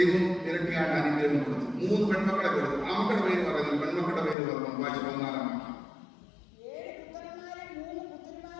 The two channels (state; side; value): drops out; right; at 4.4 s